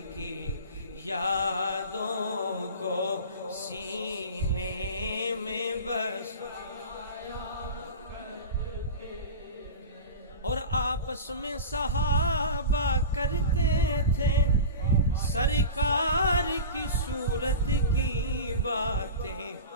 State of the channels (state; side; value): inverted; both; correlation -0.31